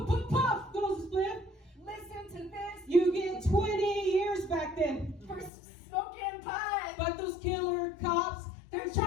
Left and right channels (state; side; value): drops out; right; at 5.5 s